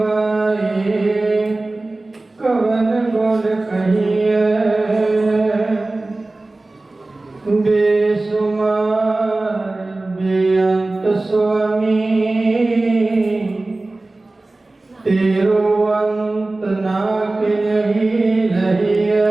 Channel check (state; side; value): quieter; left; 3.0 dB